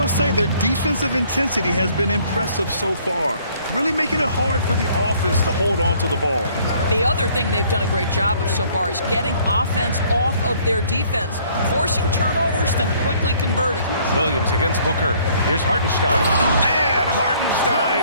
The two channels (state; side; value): inverted; both; correlation -0.60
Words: say their defensive intensity has been impressive so far, really making it hard for the offense to hold on to the ball. The other thing they've done a great job of so far is getting offense off of their defense, forcing turnovers, then quickly converting. Williams against Booker. Here's Hartenstein. And